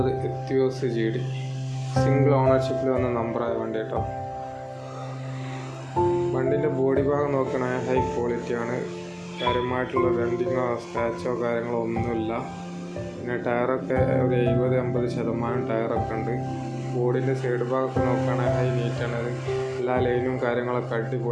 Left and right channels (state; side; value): identical; both; correlation 1.00